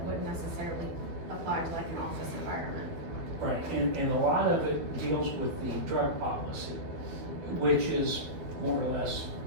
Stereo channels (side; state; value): left; late; 12 ms